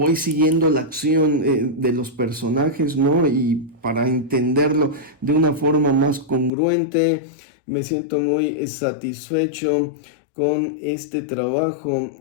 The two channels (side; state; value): right; drops out; at 6.5 s